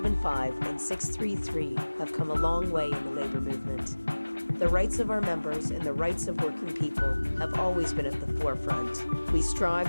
and 633 have come a long way in the labor movement. The rights of our members and the rights of working people have always been at the forefront. We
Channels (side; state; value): both; inverted; correlation -1.00